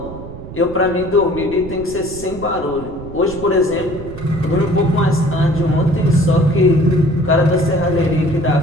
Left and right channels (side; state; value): right; noise; rumble, 13 dB below the sound